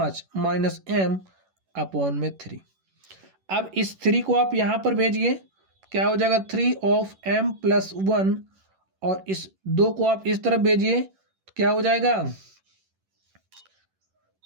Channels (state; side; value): late; left; 11 ms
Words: -m/3। अब इस 3 को आप यहाँ पर भेजिए, क्या हो जाएगा 3 of m+1 और इस 2 को आप इस तरफ भेजिए तो क्या हो जाएगा